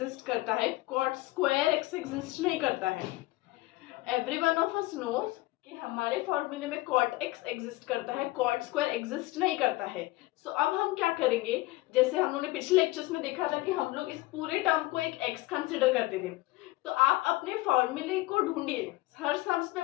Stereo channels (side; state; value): right; quieter; 19.6 dB